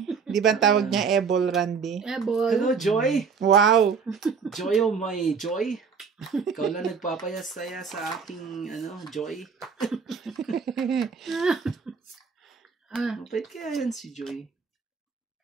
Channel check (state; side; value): quieter; left; 5.8 dB